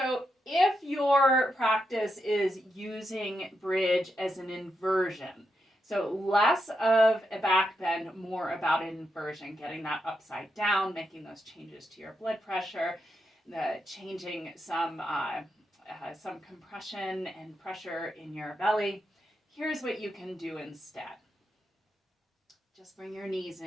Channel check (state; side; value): normal; both; correlation 0.84